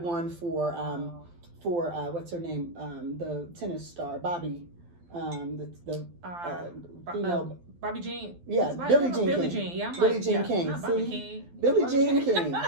one for what's her name? The tennis star, Bobby. Female. Bobby Jean. Yeah, Billie Jean King. Billie Jean. Yeah, Billie Jean King. See? Billie Jean King.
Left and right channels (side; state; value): left; late; 12 ms